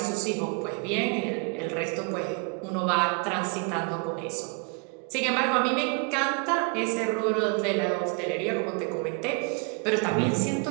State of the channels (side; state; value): left; quieter; 35.4 dB